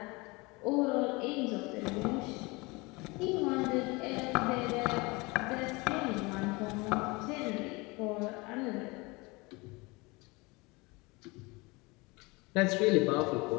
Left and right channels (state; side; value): quieter; right; 25.2 dB